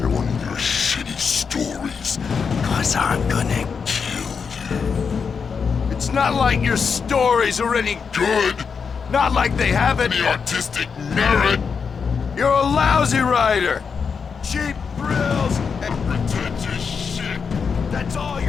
one of your shitty stories, 'cause I'm gonna kill you. It's not like your stories are any good. Not like they have any artistic merit. You're a lousy writer. Cheap thrills and pretentious shit. That's all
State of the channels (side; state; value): right; quieter; 5.9 dB